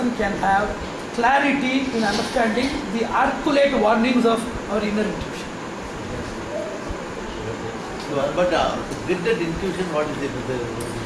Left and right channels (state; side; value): identical; both; correlation 1.00